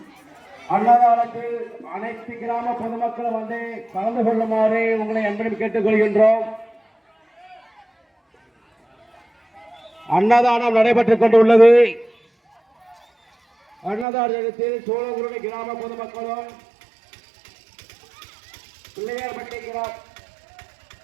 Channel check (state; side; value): drops out; left; at 14.1 s